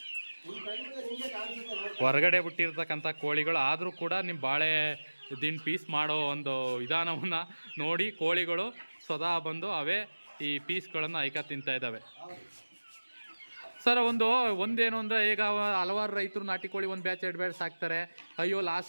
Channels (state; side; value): inverted; both; correlation -1.00